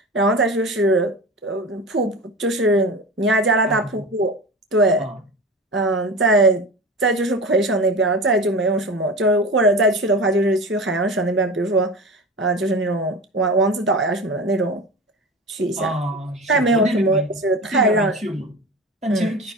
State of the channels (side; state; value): both; normal; correlation 0.30